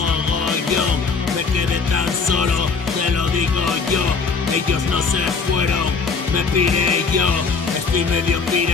Me quedé tan solo, te lo digo yo. Ellos no se fueron, me piré yo. Estoy medio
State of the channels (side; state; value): right; quieter; 5.0 dB